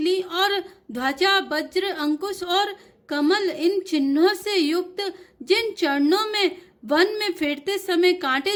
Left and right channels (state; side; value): identical; both; correlation 1.00